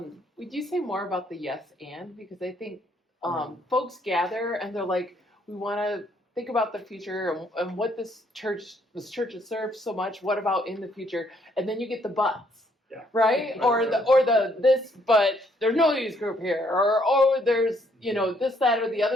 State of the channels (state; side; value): normal; both; correlation 0.69